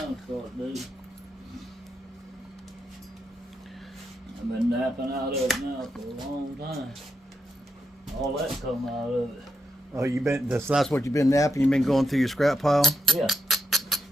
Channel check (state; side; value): normal; both; correlation 0.83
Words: start digging. I've been napping out of it now for a long time. All that come out of it. Oh, you been? That's what you've been napping. You've been going through your scrap pile. Yeah.